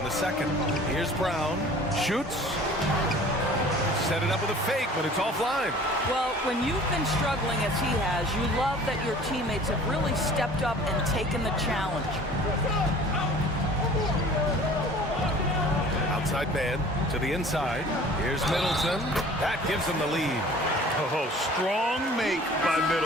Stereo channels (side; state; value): both; normal; correlation 0.47